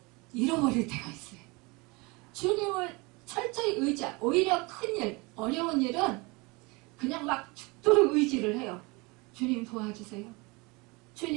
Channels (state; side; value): quieter; left; 26.3 dB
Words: 잃어버릴 때가 있어요. 주님을 철저히 오히려 큰일, 어려운 일은 그냥 막 죽도록 의지를 해요. 주님 도와주세요.